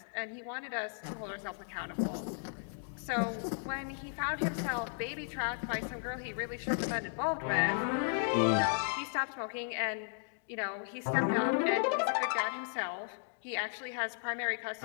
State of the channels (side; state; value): right; silent; digital silence